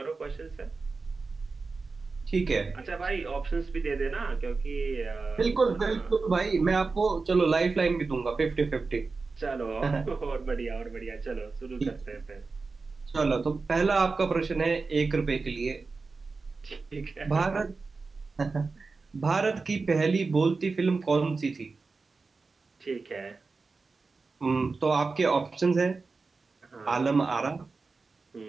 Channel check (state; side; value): quieter; left; 4.2 dB